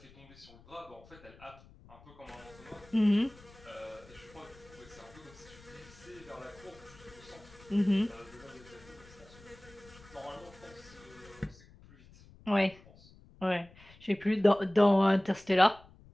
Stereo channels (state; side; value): noise; left; rumble, 23 dB below the sound